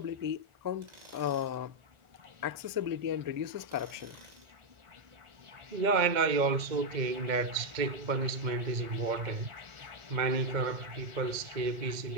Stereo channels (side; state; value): left; late; 2.1 ms